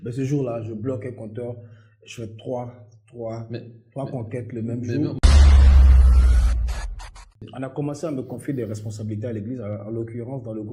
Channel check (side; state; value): both; identical; correlation 1.00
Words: Mais ce jour-là, je bloque un compteur, je fais trois conquêtes le même jour. On a commencé à me confier des responsabilités à l'église, en l'occurrence dans le